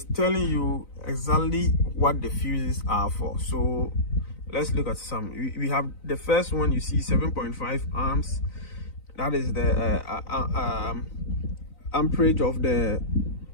telling you exactly what the fuses are for. So let's look at some. We have the first one. You see 7.5 amps. That is the amperage of the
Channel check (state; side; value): late; right; 4.0 ms